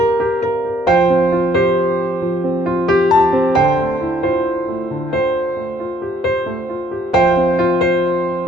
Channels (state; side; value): normal; both; correlation 0.65